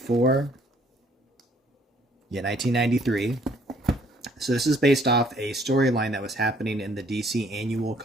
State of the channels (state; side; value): normal; both; correlation 0.63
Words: Yeah, 1993. So this is based off a storyline that was happening in the DC annual